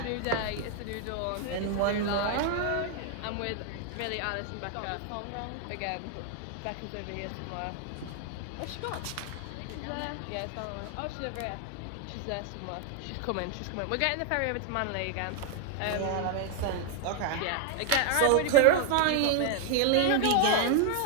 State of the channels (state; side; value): different; both; correlation 0.00